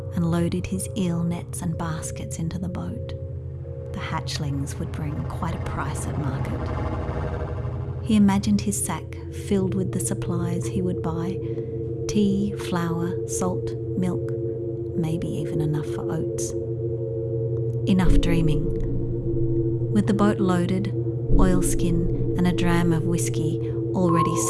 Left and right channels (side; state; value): both; identical; correlation 1.00